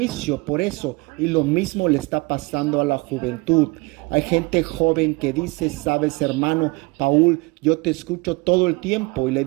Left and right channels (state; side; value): quieter; left; 25.5 dB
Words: por eso. Y lo mismo le está pasando a la juventud. Hay gente joven que dice: sabes, hermano Paul, yo te escucho todo el tiempo y le